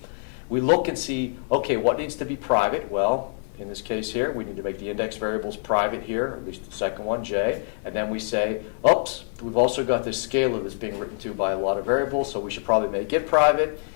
We look and see, okay, what needs to be private? Well, in this case here, we need to make the index variables private here, or at least the second one, J. And then we say, oops, we've also got this scalar that's being written to by a lot of variables, so we should probably make it private.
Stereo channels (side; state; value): right; silent; 62 dB below the other